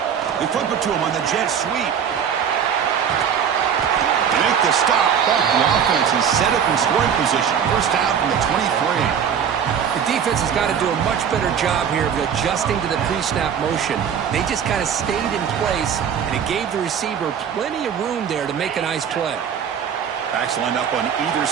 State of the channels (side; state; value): left; quieter; 7.9 dB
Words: They flip it to him on the jet sweep. They make the stop, but the offense is set up in scoring position. First down from the 23. The defense has got to do a much better job here of adjusting to the pre-snap motion. They just kind of stayed in place, and it gave the receiver plenty of room there to make a nice play. Backs lined up on either